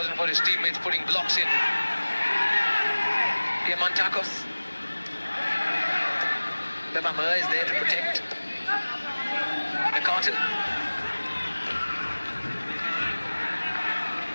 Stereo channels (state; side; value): inverted; both; correlation -1.00